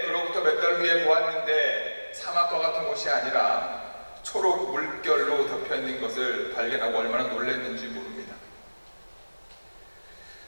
그로부터 몇 달 후에 보았는데 사막과 같은 곳이 아니라 초록 물결로 덮여있는 것을 발견하고 얼마나 놀랐는지 모릅니다.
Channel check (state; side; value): inverted; both; correlation -1.00